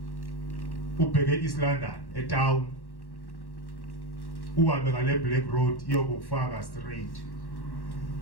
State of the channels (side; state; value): right; late; 1.1 ms